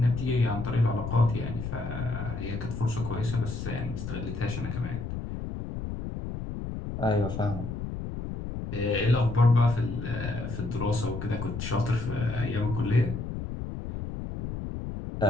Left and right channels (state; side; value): noise; left; rumble, 6 dB below the sound